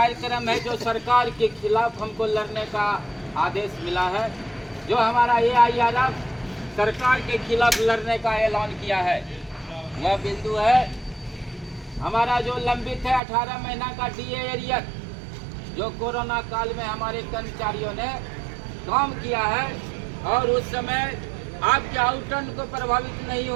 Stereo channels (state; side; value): drops out; left; at 13.2 s